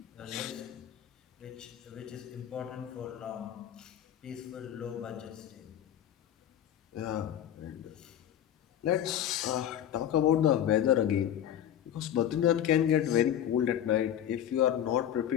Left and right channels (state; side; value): quieter; right; 10.5 dB